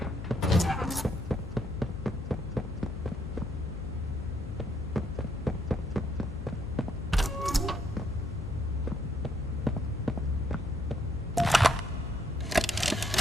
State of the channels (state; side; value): noise; left; hum, 9 dB below the sound